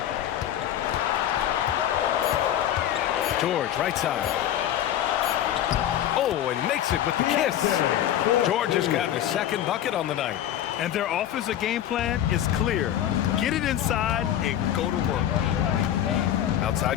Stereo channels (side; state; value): right; quieter; 11.3 dB